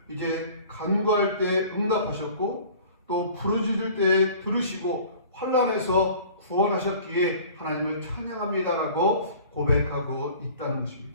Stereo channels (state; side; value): inverted; both; correlation -0.46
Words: 이제 간구할 때 응답하셨고 또 부르짖을 때 들으시고 혼란에서 구원하셨기에 하나님을 찬양합니다라고 고백하고 있다는